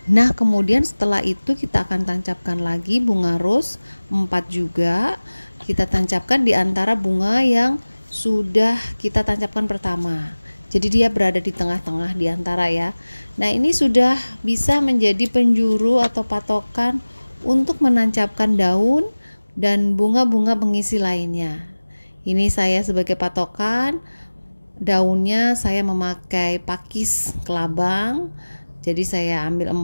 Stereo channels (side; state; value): both; inverted; correlation -1.00